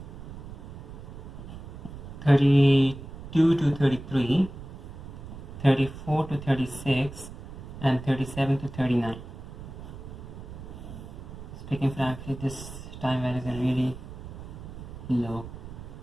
32 to 33, 34 to 36, and 37 to 39. Speaking frankly, this time values are really low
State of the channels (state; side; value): noise; right; rumble, 12 dB below the sound